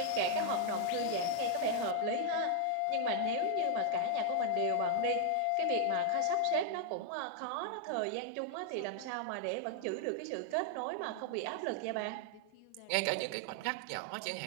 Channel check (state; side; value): different; both; correlation 0.00